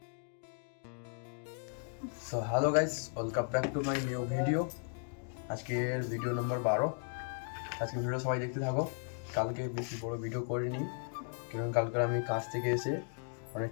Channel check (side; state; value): right; silent; 54 dB below the other